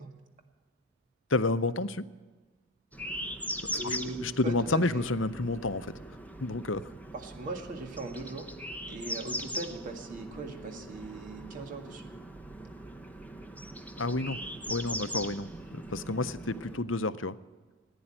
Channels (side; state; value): both; normal; correlation 0.15